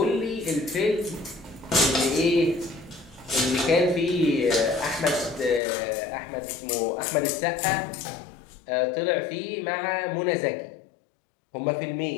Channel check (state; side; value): drops out; right; at 5.6 s